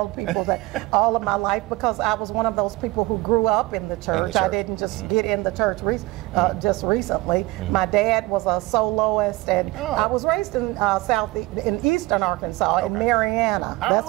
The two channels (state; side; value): quieter; left; 20.9 dB